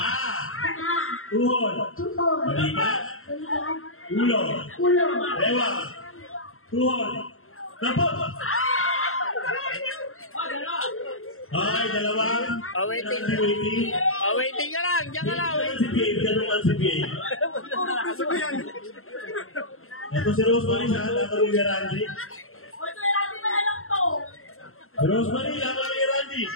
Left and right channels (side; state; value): right; late; 0.62 ms